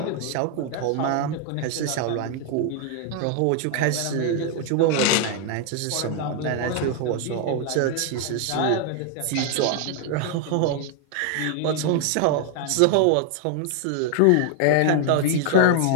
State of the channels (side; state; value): both; different; correlation 0.00